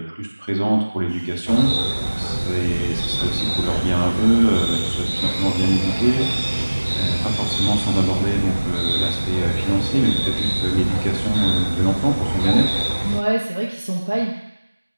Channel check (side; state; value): both; inverted; correlation -1.00